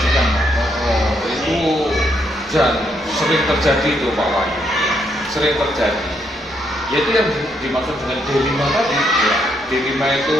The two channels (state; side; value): normal; both; correlation 0.75